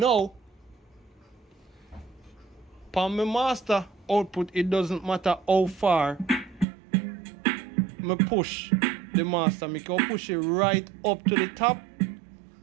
for my master output, it doesn't matter how far me push the master. I can push it right up to the top,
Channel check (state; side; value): drops out; left; at 6.7 s